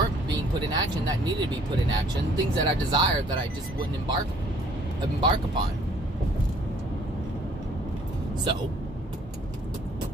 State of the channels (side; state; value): both; normal; correlation 0.59